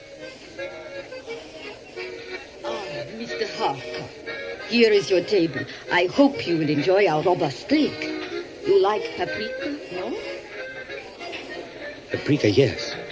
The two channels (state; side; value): identical; both; correlation 1.00